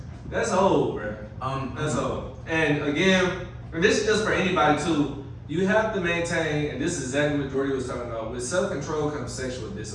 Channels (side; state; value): both; identical; correlation 1.00